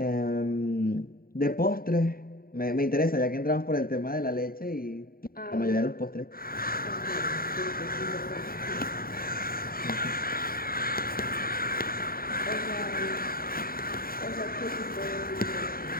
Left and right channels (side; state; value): right; late; 0.43 ms